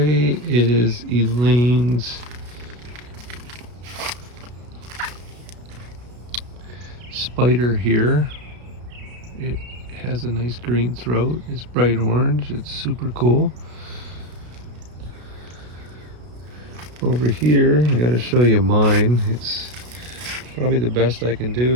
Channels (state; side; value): late; left; 33 ms